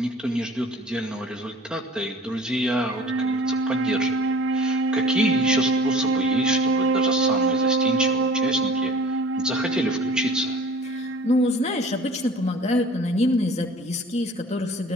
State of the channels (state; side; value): normal; both; correlation 0.46